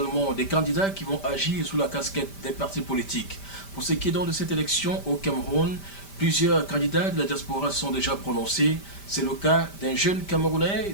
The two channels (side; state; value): right; late; 5.1 ms